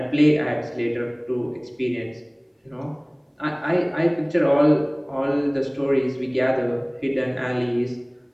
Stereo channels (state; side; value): identical; both; correlation 1.00